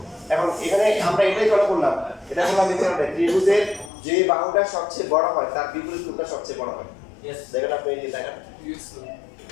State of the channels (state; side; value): drops out; right; at 3.9 s